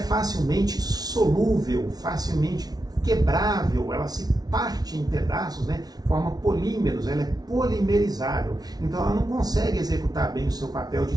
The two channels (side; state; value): left; late; 0.19 ms